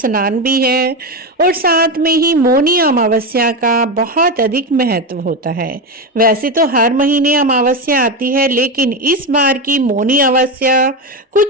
भी है और साथ में ही मौनी अमावस्या का बहुत अधिक महत्व होता है। वैसे तो हर महीने अमावस्या आती है, लेकिन इस बार की मौनी अमावस्या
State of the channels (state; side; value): normal; both; correlation 0.15